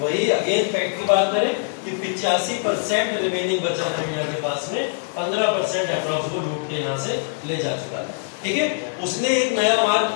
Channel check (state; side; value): silent; right; 64 dB below the other